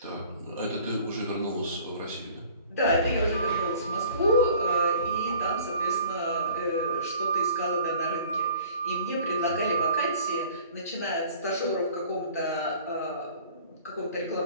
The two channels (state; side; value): inverted; both; correlation -0.50